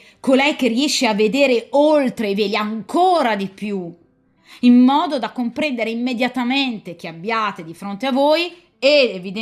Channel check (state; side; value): identical; both; correlation 1.00